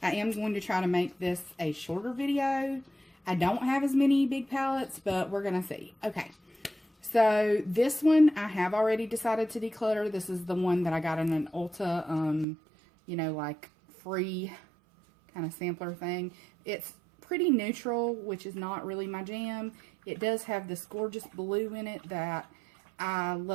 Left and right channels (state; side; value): drops out; left; at 12.5 s